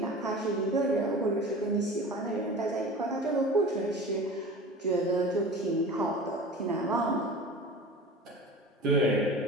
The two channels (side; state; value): both; normal; correlation 0.37